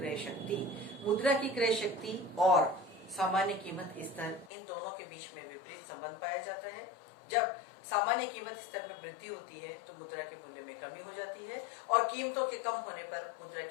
शक्ति. मुद्रा की क्रय शक्ति और सामान्य कीमत स्तर, इन दोनों के बीच में विपरीत संबंध पाया जाता है. जब सामान्य कीमत स्तर में वृद्धि होती है तो मुद्रा के मूल्य में कमी हो जाती है और कीमतों के कम होने पर मुद्रा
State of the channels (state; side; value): drops out; right; at 4.5 s